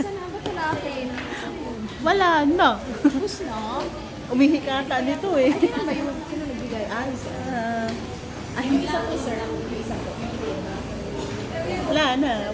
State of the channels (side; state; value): both; identical; correlation 1.00